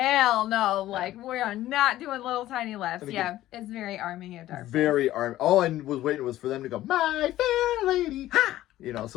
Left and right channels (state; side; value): quieter; right; 14.6 dB